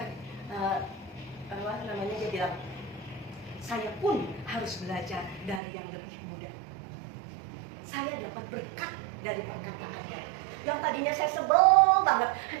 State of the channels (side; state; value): left; drops out; at 5.6 s